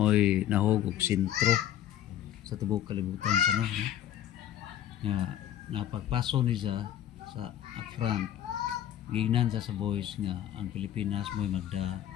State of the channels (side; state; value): right; quieter; 11.3 dB